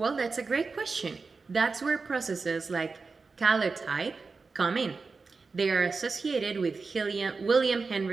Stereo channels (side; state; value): left; quieter; 4.4 dB